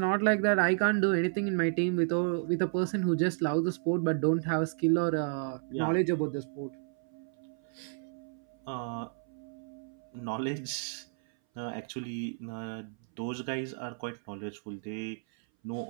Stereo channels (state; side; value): silent; left; 56 dB below the other